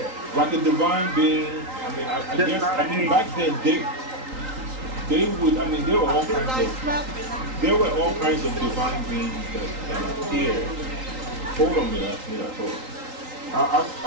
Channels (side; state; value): left; late; 3.8 ms